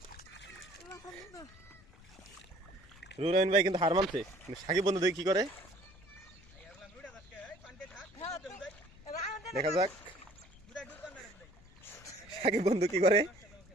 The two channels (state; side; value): noise; left; rumble, 24 dB below the sound